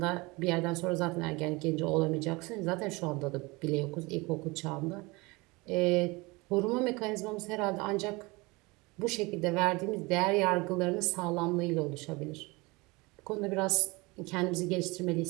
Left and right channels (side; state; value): left; quieter; 24.5 dB